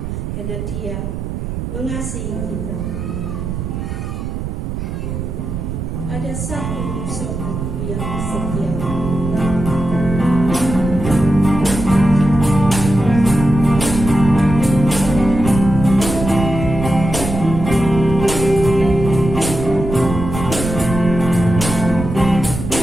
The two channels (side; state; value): right; noise; rumble, 5 dB below the sound